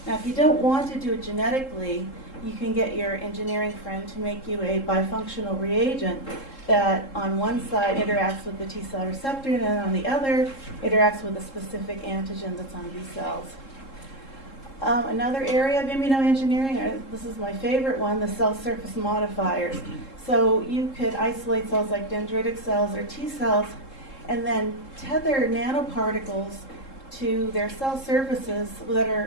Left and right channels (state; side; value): late; right; 3.7 ms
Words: Now, if you don't want to do it genetically, you can get your engineering friend to make you a bifunctional reagent that on one side interacts with the T cell receptor, and then on the other interacts with a specific antigen that's on B cells. Another area of immunoengineering, this is my favorite one, the cell surface modifiers. So you could isolate cells like dendritic cells or T cells and then tether nanoparticles to their cell surfaces